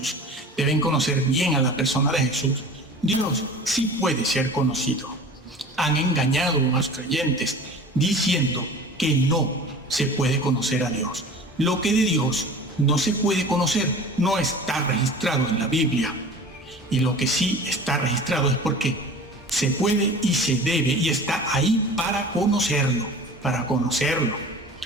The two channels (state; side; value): normal; both; correlation 0.40